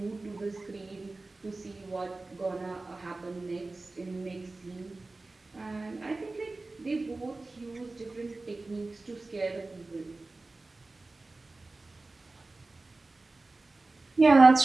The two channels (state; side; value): quieter; left; 3.3 dB